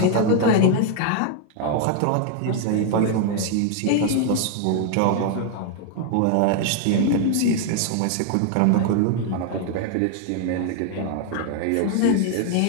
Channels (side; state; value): both; different; correlation 0.00